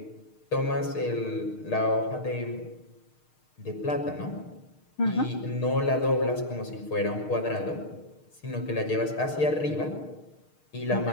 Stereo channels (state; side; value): late; right; 6.5 ms